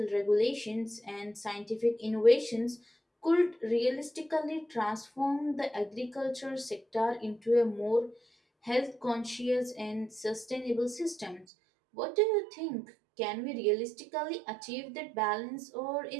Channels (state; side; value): drops out; left; at 11.5 s